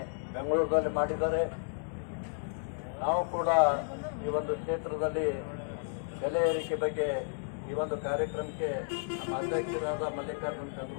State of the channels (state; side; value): silent; right; digital silence